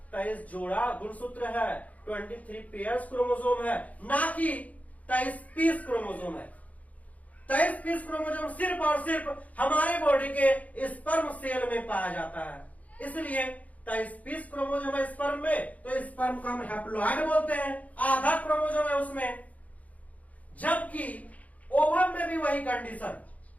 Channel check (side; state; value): right; late; 0.071 ms